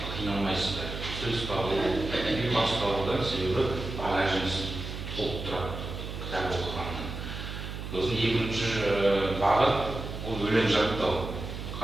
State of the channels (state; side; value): noise; right; hum, 7 dB below the sound